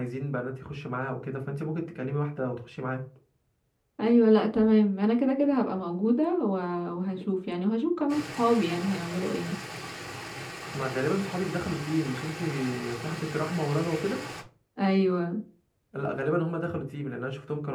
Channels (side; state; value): both; identical; correlation 1.00